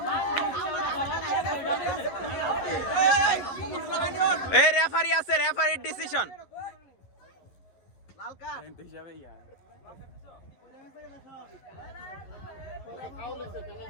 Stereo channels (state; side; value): late; right; 11 ms